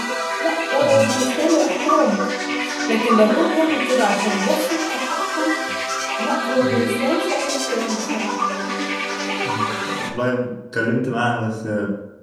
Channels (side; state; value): both; identical; correlation 1.00